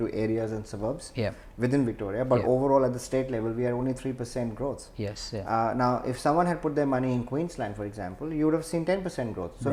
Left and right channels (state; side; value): identical; both; correlation 1.00